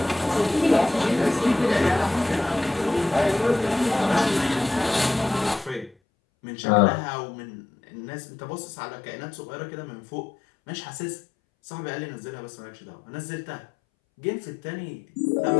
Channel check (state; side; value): drops out; right; at 6.0 s